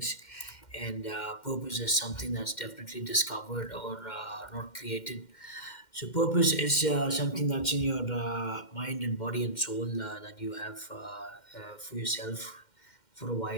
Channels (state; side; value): late; right; 2.1 ms